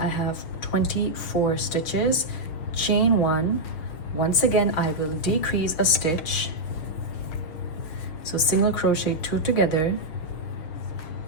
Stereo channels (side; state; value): right; late; 6.5 ms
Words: have 24 stitches, chain 1. Once again I will decrease a stitch, so single crochet 2 together,